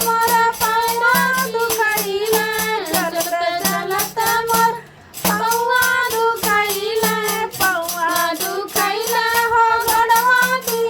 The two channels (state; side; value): identical; both; correlation 1.00